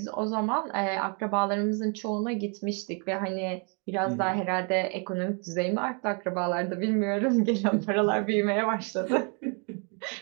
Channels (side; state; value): left; quieter; 36.7 dB